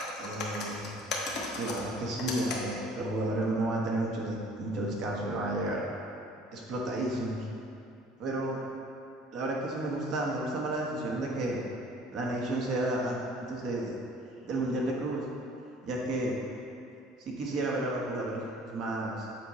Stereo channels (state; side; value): normal; both; correlation 0.52